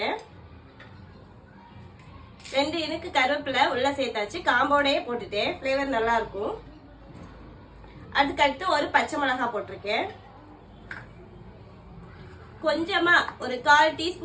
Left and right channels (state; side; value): identical; both; correlation 1.00